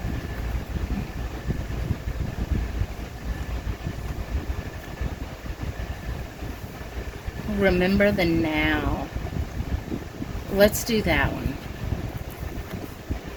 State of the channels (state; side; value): identical; both; correlation 1.00